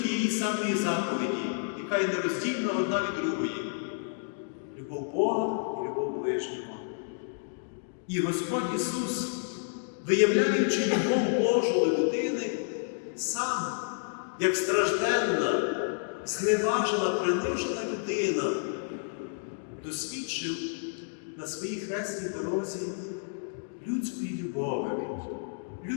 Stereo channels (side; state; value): right; silent; digital silence